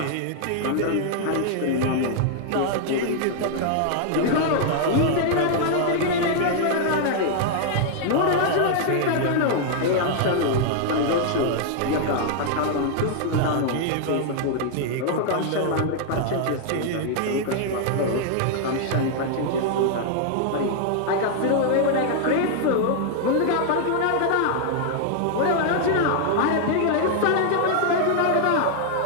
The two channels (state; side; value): different; both; correlation -0.01